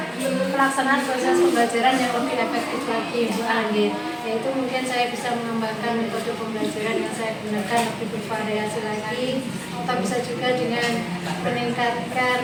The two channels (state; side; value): identical; both; correlation 1.00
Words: pelaksanaan proses pembelajaran yang lebih efektif lagi Bu Anggit. Yaitu mungkin saya bisa mengembangkan metode pembelajaran yang saya gunakan lebih bervariasi lagi, atau bisa juga dengan